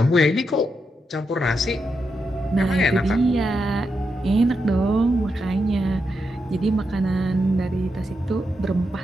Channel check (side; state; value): both; normal; correlation 0.85